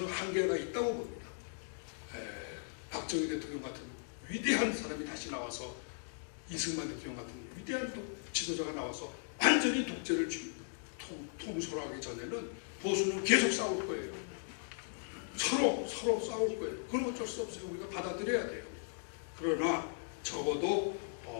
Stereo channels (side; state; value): right; silent; digital silence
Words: 한계가 있다고 봅니다. 박정희 대통령 같은 위대한 사람이 다시 나와서, 이승만 대통령 같은 위대한 지도자가 나와서 완전히 독재를 통솔하기 전에는 보수는 계속 싸울 거예요. 서로 싸울 거예요. 그건 어쩔 수 없어요. 우리가 받아들여야 돼요. 그러나 적어도